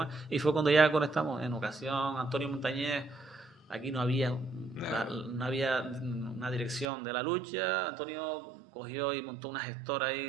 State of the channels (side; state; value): left; drops out; at 6.9 s